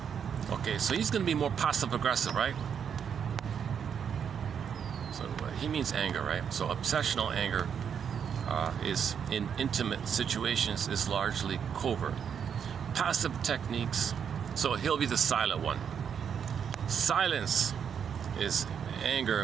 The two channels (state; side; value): quieter; left; 7.6 dB